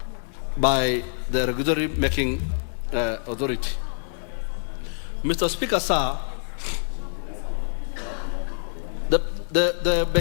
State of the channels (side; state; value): right; silent; digital silence